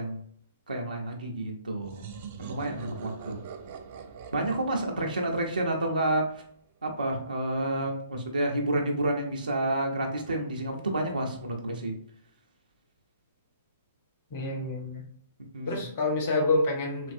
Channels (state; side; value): inverted; both; correlation -0.64